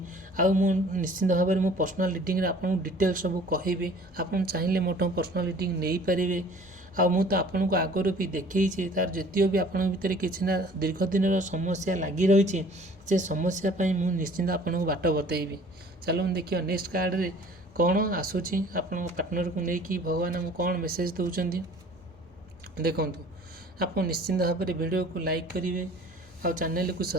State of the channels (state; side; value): normal; both; correlation 0.50